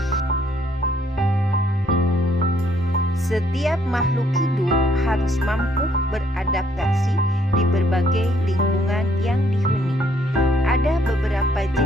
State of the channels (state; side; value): normal; both; correlation 0.67